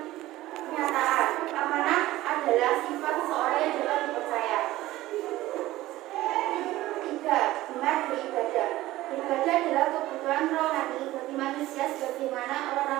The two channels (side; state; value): left; quieter; 16.6 dB